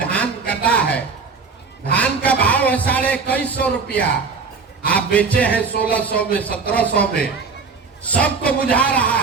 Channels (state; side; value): quieter; left; 4.9 dB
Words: कटा है, धान का भाव है 2150 रुपया, आप बेचे हैं 1600 में, 1700 में। सबको बुझा